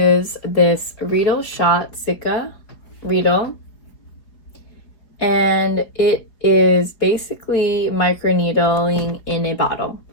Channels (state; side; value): late; right; 4.8 ms